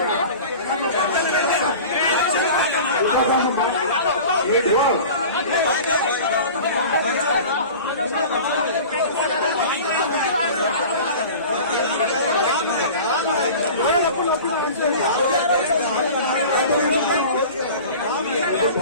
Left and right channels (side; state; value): both; inverted; correlation -0.38